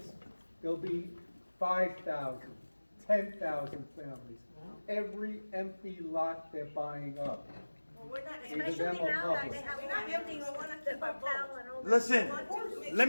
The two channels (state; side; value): inverted; both; correlation -1.00